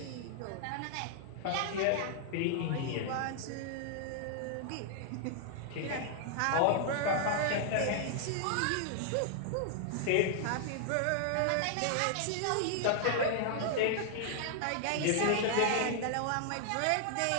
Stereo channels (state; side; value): different; both; correlation -0.01